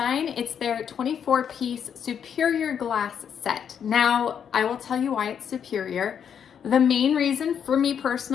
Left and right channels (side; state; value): right; quieter; 8.0 dB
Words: It's their 24-piece superior glass set. Now, I will tell you why it's superior. The main reason for me